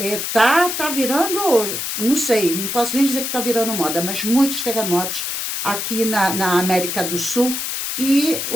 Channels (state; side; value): noise; left; hiss, 3 dB below the sound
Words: Tá virando, não sei, não posso nem dizer que tá virando moda, mas muitos terremotos aqui na América do Sul. E